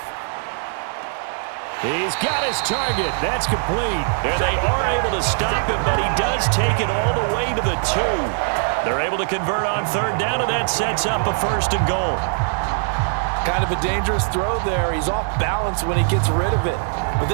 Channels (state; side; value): silent; left; digital silence